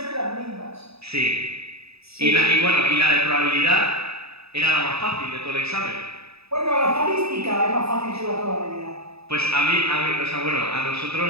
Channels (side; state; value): left; late; 0.78 ms